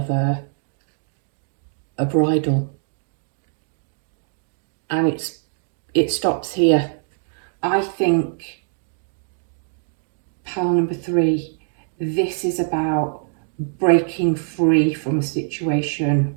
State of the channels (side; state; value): left; silent; digital silence